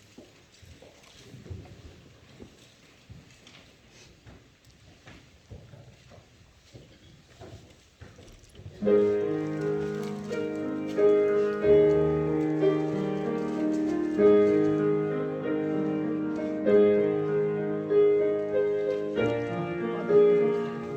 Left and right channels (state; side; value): identical; both; correlation 1.00